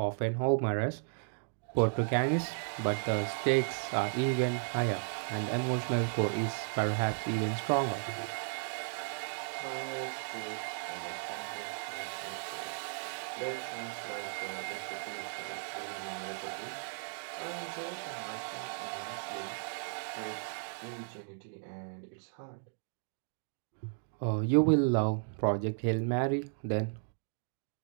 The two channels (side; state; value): left; silent; digital silence